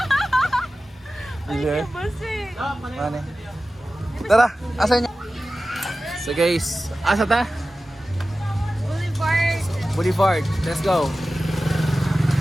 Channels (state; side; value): normal; both; correlation 0.95